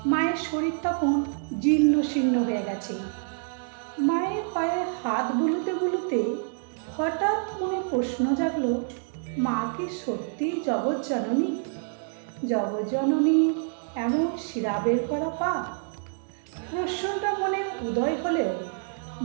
মায়ের শরীর তখন জীর্ণ শীর্ণ হয়ে গেছে। মায়ের পায়ে হাত বুলোতে বুলোতে হঠাৎ মনে প্রশ্ন জাগলো, মা কি সত্যিই জগৎজননী? জগৎজননী এমন শিরা বের করা পা? প্রশ্নটা মনে উদয় হলেও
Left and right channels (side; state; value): left; silent; 60 dB below the other